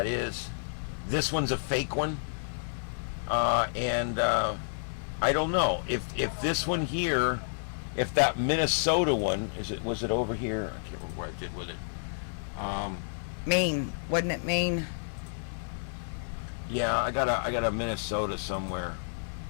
is. This one's a fake one, and I don't know if this one here, if that Minnesota one was it over here? I can't remember what I did with it. Maine, wasn't it Maine? Yeah, I got a Minnesota somewhere.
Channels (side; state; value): right; silent; digital silence